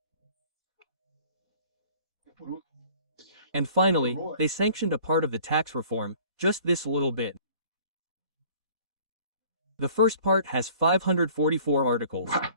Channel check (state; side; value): late; left; 2.0 ms